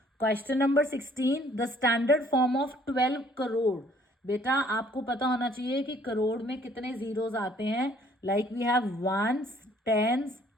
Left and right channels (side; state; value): both; normal; correlation 0.60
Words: Question number 16, the standard form of 12 crore. बेटा आपको पता होना चाहिए कि करोड़ में कितने जीरोस आते हैं, like we have ones, tens,